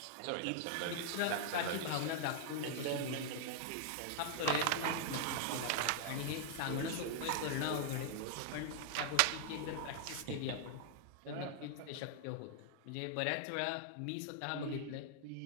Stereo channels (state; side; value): different; both; correlation -0.01